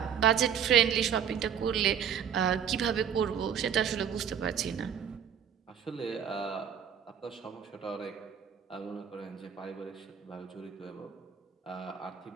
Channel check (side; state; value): left; quieter; 8.1 dB